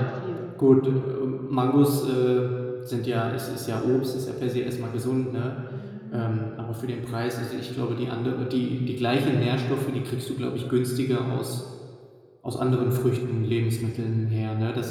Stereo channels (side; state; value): both; identical; correlation 1.00